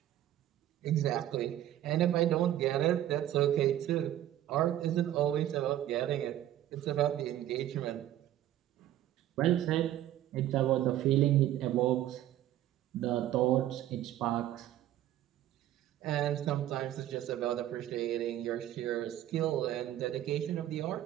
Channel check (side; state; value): left; quieter; 12.7 dB